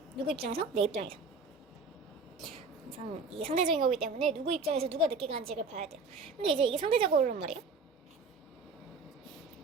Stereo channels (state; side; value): quieter; left; 4.0 dB